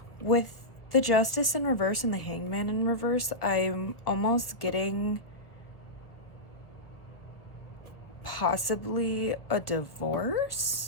With the Justice in reverse and the Hangman in reverse, I'm almost getting possibly a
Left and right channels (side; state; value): right; late; 1.3 ms